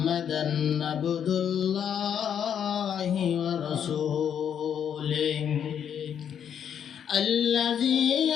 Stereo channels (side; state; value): right; quieter; 8.6 dB